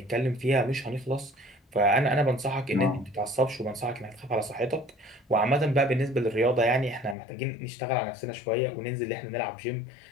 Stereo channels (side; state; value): right; drops out; at 7.2 s